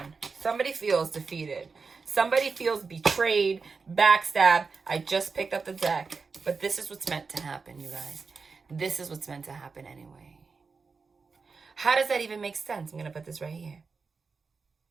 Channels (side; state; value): left; quieter; 4.7 dB